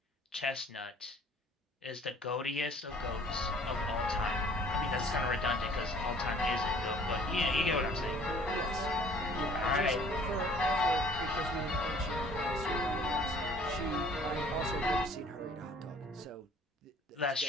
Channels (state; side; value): normal; both; correlation 0.54